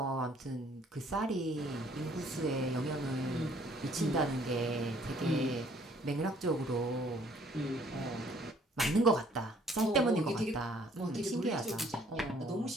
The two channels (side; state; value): both; normal; correlation 0.60